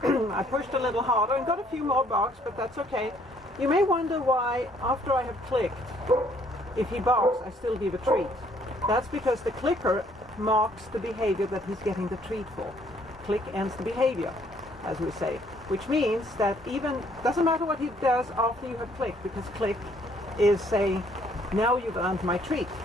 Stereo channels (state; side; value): normal; both; correlation 0.64